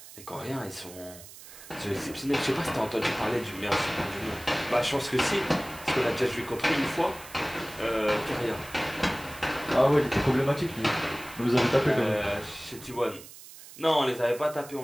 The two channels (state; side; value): noise; right; hiss, 17 dB below the sound